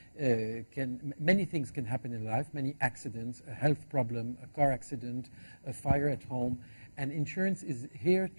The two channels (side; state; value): both; inverted; correlation -1.00